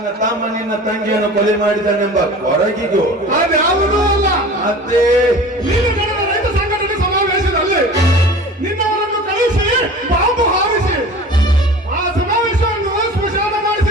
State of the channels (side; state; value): both; normal; correlation 0.40